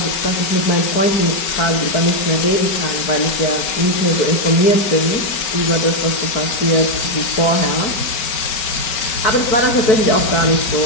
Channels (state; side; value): late; right; 5.2 ms